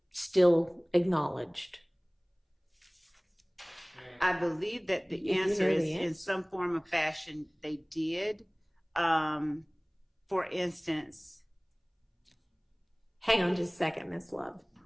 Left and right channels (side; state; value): both; identical; correlation 1.00